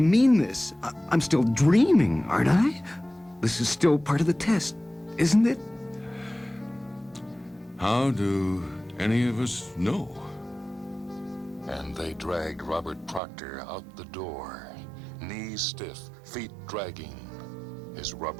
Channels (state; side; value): drops out; left; at 13.2 s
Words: mean this. I'm still dreaming, aren't I? This is still part of the test, isn't it? How do any of us know? And they dragged Robert Proctor out the door, knees stiff, feet dragging, his